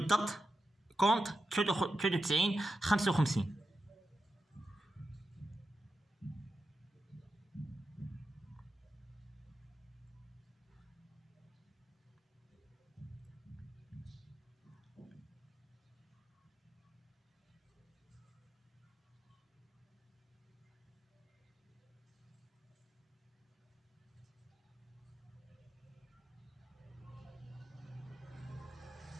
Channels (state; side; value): normal; both; correlation 0.90